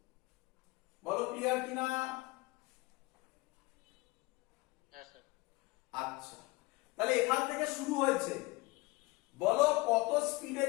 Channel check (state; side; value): quieter; right; 22.5 dB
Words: বলো ক্লিয়ার কিনা? হ্যাঁ স্যার। আচ্ছা, তাহলে এখান থেকে শুরু হয়েছে। বলো কত স্পিডে